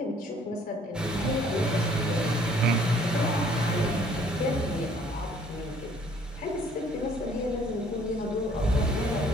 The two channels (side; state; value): both; normal; correlation 0.59